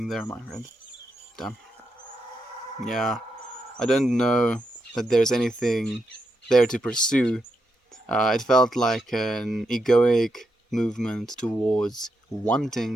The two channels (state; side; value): normal; both; correlation 0.83